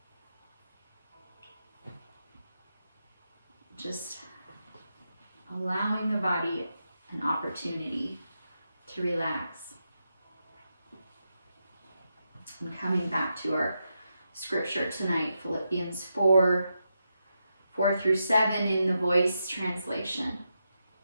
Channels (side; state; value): both; inverted; correlation -0.86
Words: Just allowing the body an opportunity to relax. And coming back to our scripture tonight, Philippians 4:4-7 in the Voice translation.